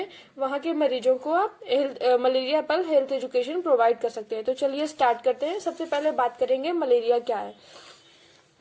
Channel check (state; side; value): identical; both; correlation 1.00